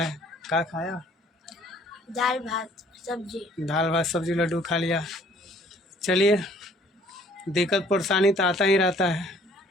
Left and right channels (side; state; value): both; normal; correlation 0.58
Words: क्या खाया? दाल भात सब्जी। दाल भात सब्जी लड्डू खा लिया। चलिए, दिक्कत परेशानी तो आता ही रहता है।